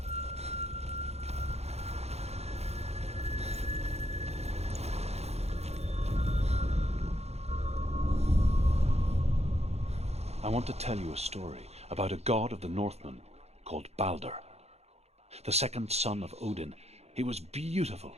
I want to tell you a story about a god of the Northmen called Balder. The second son of Odin. He was beautiful,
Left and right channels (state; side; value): late; left; 0.31 ms